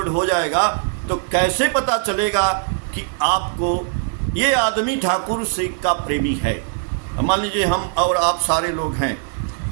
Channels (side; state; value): left; silent; 60 dB below the other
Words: हो जाएगा तो कैसे पता चलेगा कि आपको ये आदमी ठाकुर से का प्रेमी है? मान लीजिए हम और आप सारे लोग हैं,